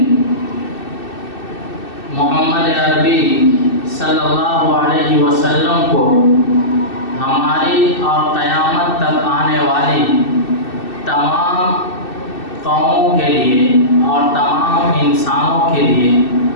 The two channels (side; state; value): right; late; 2.6 ms